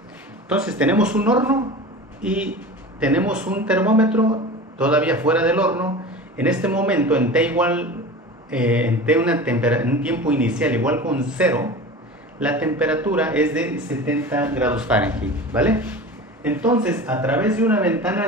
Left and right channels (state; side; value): normal; both; correlation 0.34